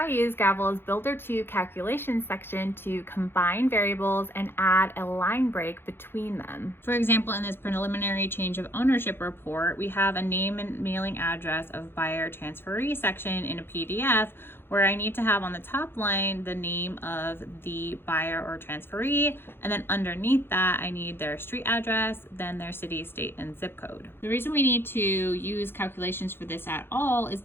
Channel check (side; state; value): right; late; 0.11 ms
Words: I use Gavel's Builder 2 calculation section to combine variables and add a line break between them. For example, in this preliminary change of ownership report, we have a name and mailing address of buyer transferee section in a PDF where I need to have on the top line the name of the buyer or transferee, and then underneath that I need their street address, then their city, state, and zip code. The reason we need to use calculations for this at all is